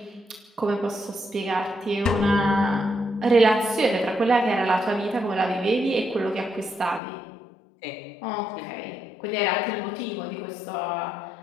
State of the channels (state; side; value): drops out; right; at 7.0 s